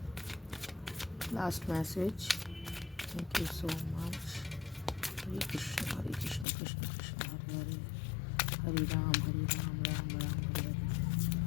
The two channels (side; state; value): right; drops out; at 6.5 s